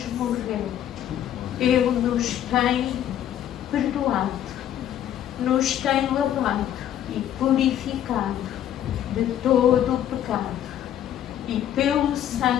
morreu, ele nos tem perdoado, nos tem lavado e purificado de todo o pecado. E pelo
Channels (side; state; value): right; quieter; 10.9 dB